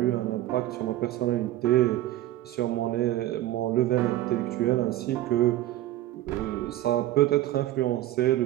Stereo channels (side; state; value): left; quieter; 14.5 dB